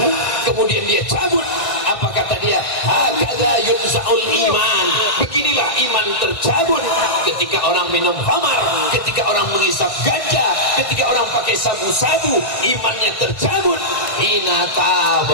kemudian dia cabut. Apa kata dia? Hakadha yunza'ul iman, beginilah iman tercabut. Ketika orang minum khamar, ketika orang menghisap ganja, ketika orang pakai sabu-sabu, imannya tercabut. Hina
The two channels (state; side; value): late; right; 1.6 ms